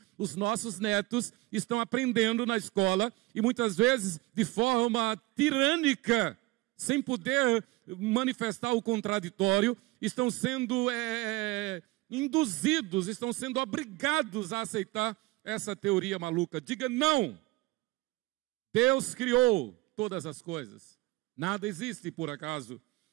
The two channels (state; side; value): quieter; left; 21.0 dB